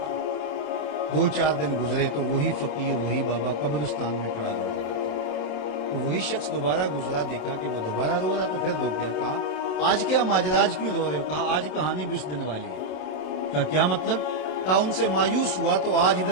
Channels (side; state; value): right; late; 27 ms